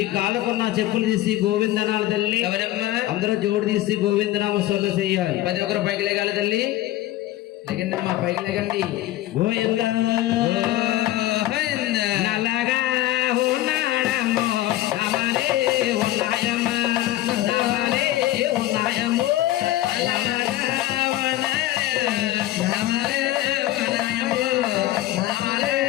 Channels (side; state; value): right; quieter; 15.2 dB